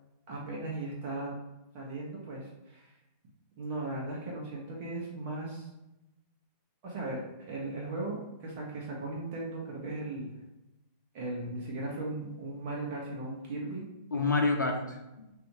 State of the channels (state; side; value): inverted; both; correlation -0.43